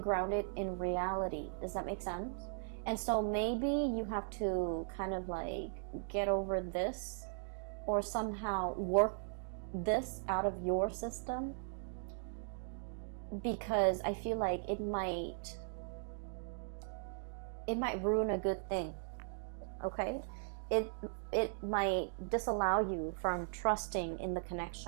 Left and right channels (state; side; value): silent; left; digital silence